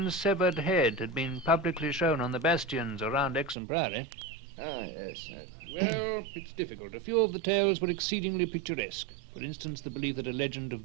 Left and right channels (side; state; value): left; drops out; at 3.6 s